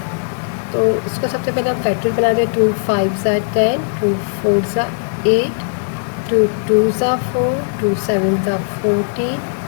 तो इसको सबसे पहले हम फैक्टर बना दें। 2 5 सा 10, 2 4 सा 8, 2 2 सा 4, 2 7 सा 14,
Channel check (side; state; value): right; silent; 58 dB below the other